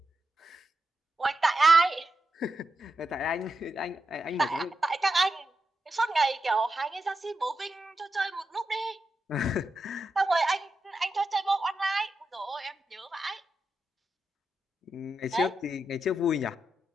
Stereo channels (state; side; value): normal; both; correlation 0.87